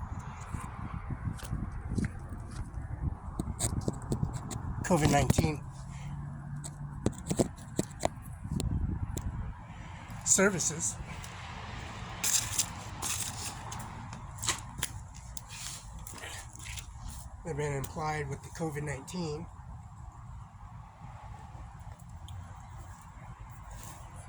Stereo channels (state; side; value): identical; both; correlation 1.00